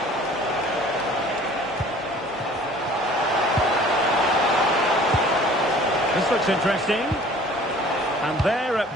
This looks interesting. And there it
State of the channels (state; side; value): normal; both; correlation 0.49